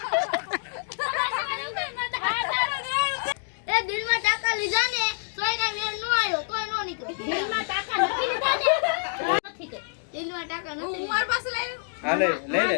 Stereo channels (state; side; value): silent; right; 60 dB below the other